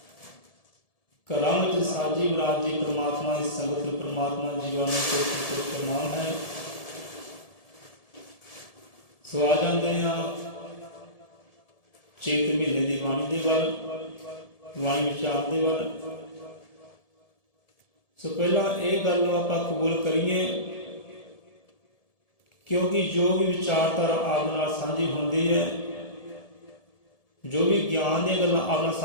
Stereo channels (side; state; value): right; late; 1.7 ms